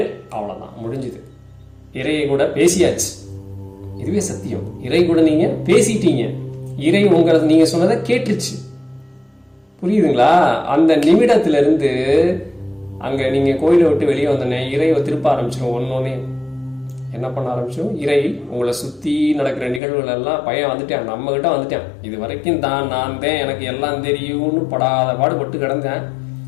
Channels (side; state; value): right; drops out; at 19.8 s